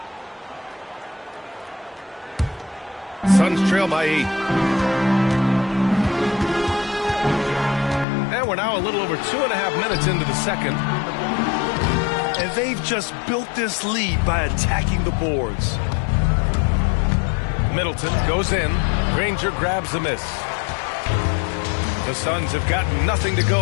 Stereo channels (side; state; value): right; drops out; at 8.1 s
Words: Suns trail by 8. And we're now a little over 2.5 minutes into the second. And they've just built this lead by attacking the boards. Middleton goes in. Granger grabs the miss. The Suns have gotten nothing to